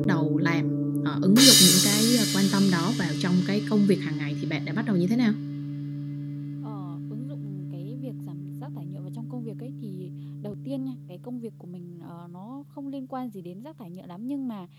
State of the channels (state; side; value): identical; both; correlation 1.00